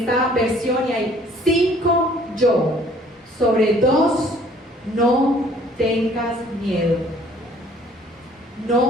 versión y hay 5 yo. Sobre 2, no tengas miedo.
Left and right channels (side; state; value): both; normal; correlation 0.57